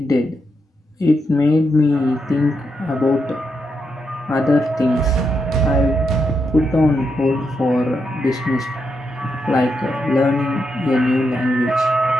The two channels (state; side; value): normal; both; correlation 0.82